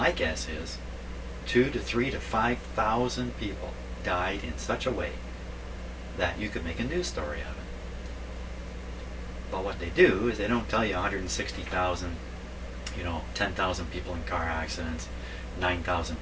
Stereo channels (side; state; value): both; identical; correlation 1.00